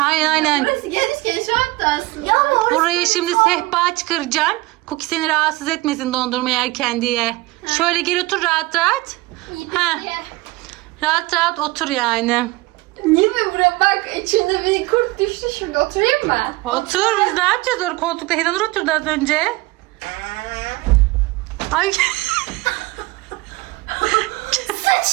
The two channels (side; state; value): left; quieter; 21.4 dB